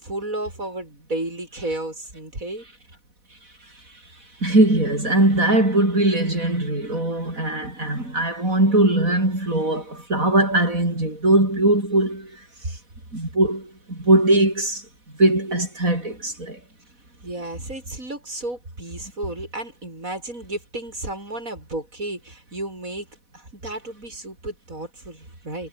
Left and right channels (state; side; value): late; left; 4.1 ms